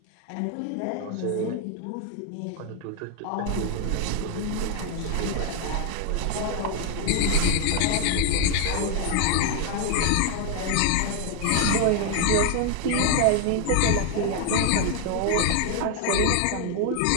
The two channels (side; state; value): both; different; correlation 0.01